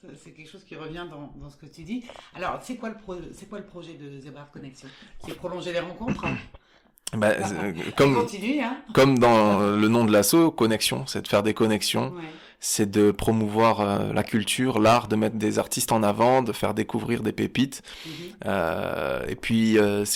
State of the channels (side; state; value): both; identical; correlation 1.00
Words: C'est quelque chose qui revient dans ce que tu dis. Alors c'est quoi le projet de Zébrard Connexion? C'est prolonger les rencontres? Comme dans le nom de l'asso, connexion, c'est de faire des connexions, ouais. C'est de promouvoir la culture, l'art, de mettre des artistes en avant, de faire découvrir des pépites, et puis